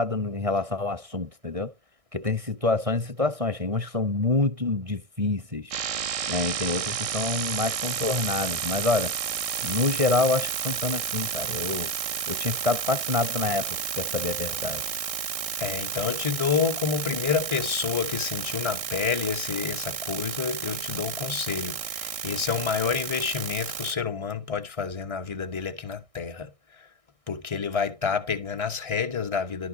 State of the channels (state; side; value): late; left; 1.6 ms